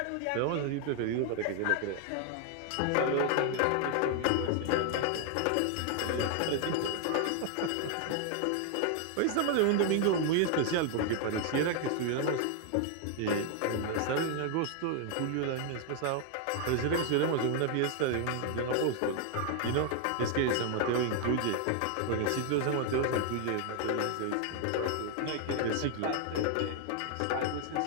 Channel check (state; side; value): different; both; correlation 0.00